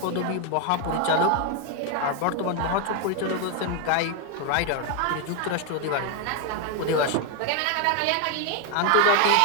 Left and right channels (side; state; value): both; different; correlation 0.01